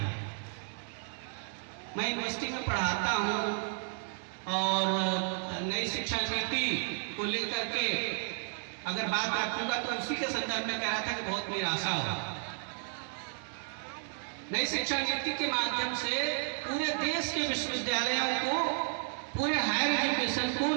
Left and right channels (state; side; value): silent; left; 56 dB below the other